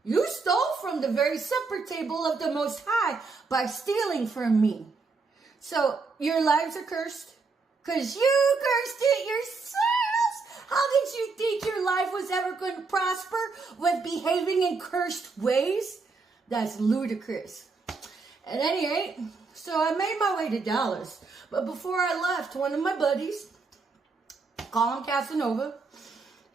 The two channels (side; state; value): left; quieter; 4.3 dB